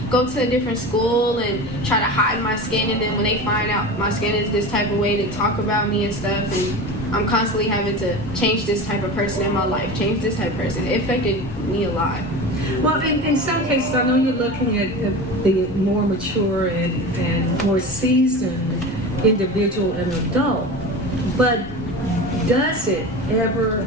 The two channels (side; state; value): both; normal; correlation 0.30